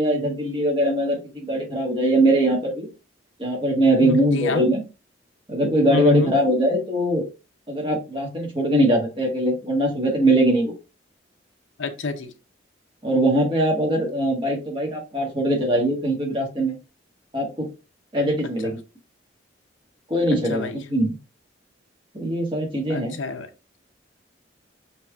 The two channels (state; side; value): normal; both; correlation 0.50